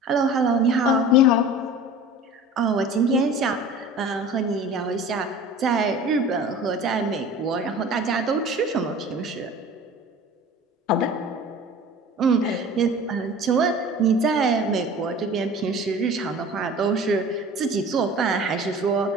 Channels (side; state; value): both; normal; correlation 0.41